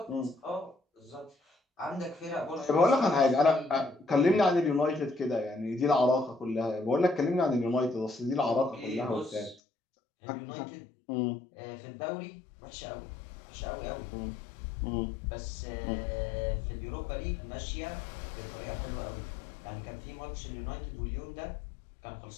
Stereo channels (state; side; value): drops out; right; at 9.6 s